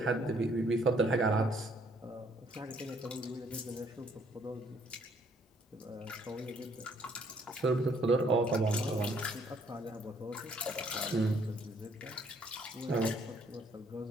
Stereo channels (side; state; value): both; normal; correlation 0.65